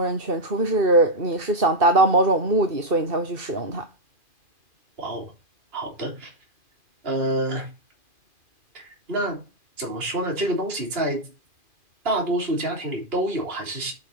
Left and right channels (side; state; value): left; late; 2.4 ms